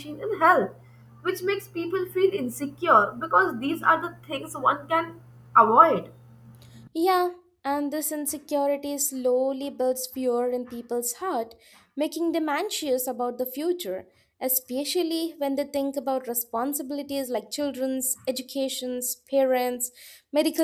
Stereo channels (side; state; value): both; identical; correlation 1.00